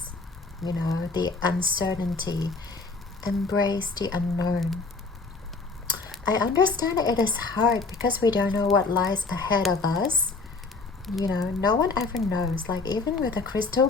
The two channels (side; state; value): right; quieter; 4.0 dB